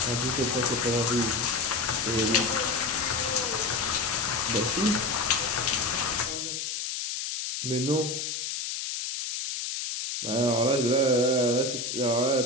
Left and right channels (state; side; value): noise; left; hiss, 4 dB below the sound